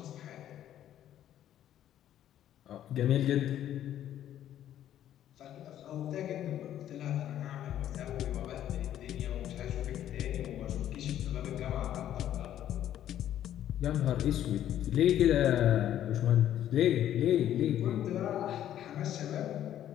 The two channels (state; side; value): quieter; right; 11.4 dB